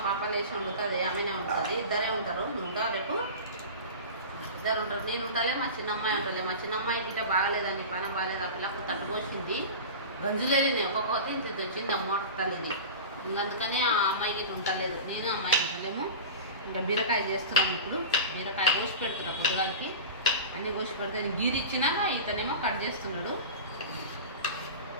పాప లేచి వండుతుంది, ఆమెనే ఉంటుంది, ఇద్దరే ఉంటారు. ఇంకా రేపు ఇద్దరు ఉంటారు, నేను ఉంటాలే, మా చిన్నమ్మాయి ఉంటలే. మా చిన్నమ్మాయి ఇంటే బాగాలేదని, పనం బాగాలేదు, ఆ పిల్లకు తట్టు పోసింది. గంజులేదు, ఒక్కొక్కటి ఇంత వచ్చింది అమ్మ తల్లిది. ఇంకా అందుకని ఆ అమ్మాయికి ఇట్లా ఉండలేదు, నేను అమ్మాయి ఉంటలేము. ఇంకా బీరకాయ చేస్తున్నాము. ఇప్పుడు బీరకాయ కోసి పెడుతున్నా పొద్దుగాలకి. అన్నీ కోసి పెడితే గీరి ఇచ్చినాక ఇతనేమో కట్ చేస్తున్నాడు.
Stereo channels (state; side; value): inverted; both; correlation -0.30